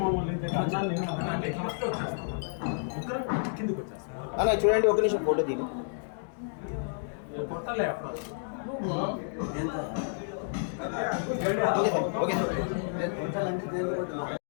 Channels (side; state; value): right; silent; digital silence